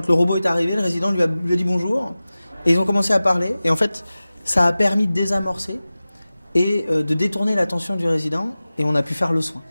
le robot est arrivé, le résident lui a dit bonjour. Et ils ont commencé à parler. Et en fait, ça a permis de désamorcer et de détourner l'attention du résident. Et on a pu faire le soin.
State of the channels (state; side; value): inverted; both; correlation -0.96